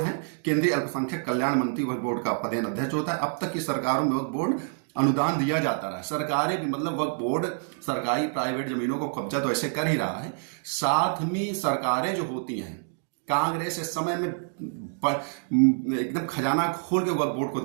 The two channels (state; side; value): silent; left; 60 dB below the other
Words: हैं। केंद्रीय अल्पसंख्यक कल्याण मंत्री वक्फ बोर्ड का पदेन अध्यक्ष होता है। अब तक की सरकारों में वक्फ बोर्ड अनुदान दिया जाता रहा। सरकारें भी, मतलब वक्फ बोर्ड सरकारी प्राइवेट जमीनों को कब्जा तो ऐसे कर ही रहा है, साथ में सरकारें जो होती हैं, कांग्रेस इस समय में एकदम खजाना खोल के वक्फ बोर्ड को